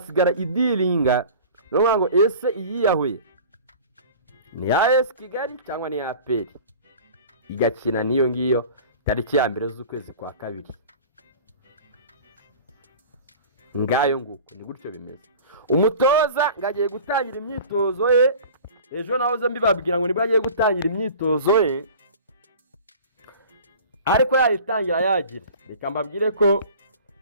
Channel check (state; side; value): inverted; both; correlation -0.41